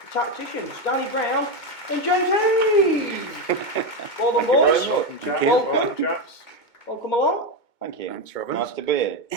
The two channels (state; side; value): late; right; 2.2 ms